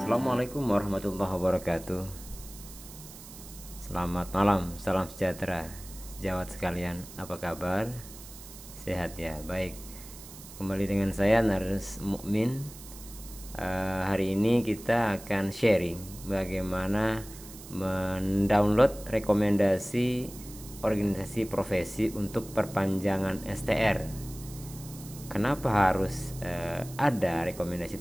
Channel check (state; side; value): noise; right; hiss, 16 dB below the sound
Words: Assalamualaikum warahmatullahi wabarakatuh. Selamat malam, salam sejahtera sejawat sekalian. Apa kabar? Sehat ya? Baik. Kembali dengan saya Narus Mukmin. Hari ini kita akan sharing bagaimana mendownload rekomendasi organisasi profesi untuk perpanjangan STR. Kenapa harus ada rekomendasi